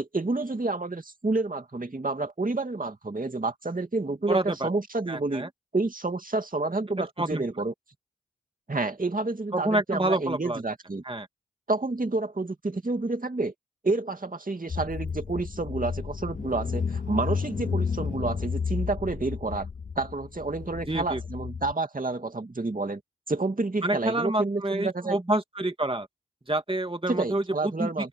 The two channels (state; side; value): normal; both; correlation 0.58